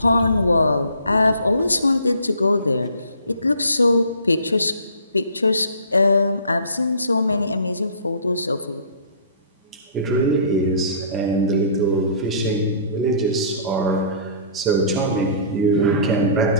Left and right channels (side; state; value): both; inverted; correlation -0.49